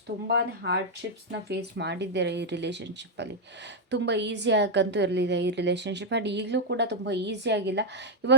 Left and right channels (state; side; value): normal; both; correlation 0.00